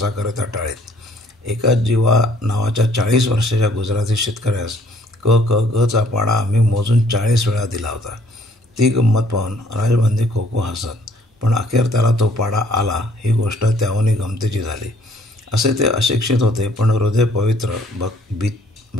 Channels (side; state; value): both; normal; correlation 0.61